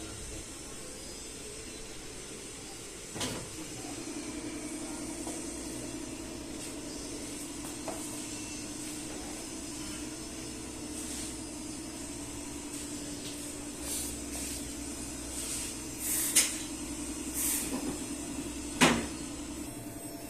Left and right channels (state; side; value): identical; both; correlation 1.00